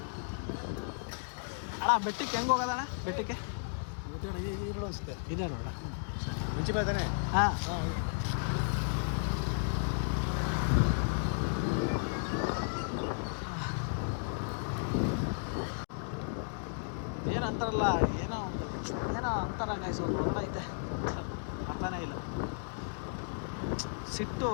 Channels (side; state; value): right; silent; digital silence